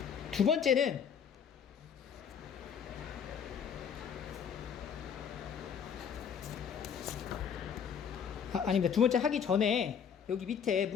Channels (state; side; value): quieter; right; 7.4 dB